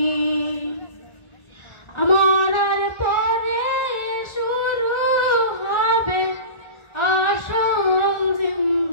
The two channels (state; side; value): late; right; 1.4 ms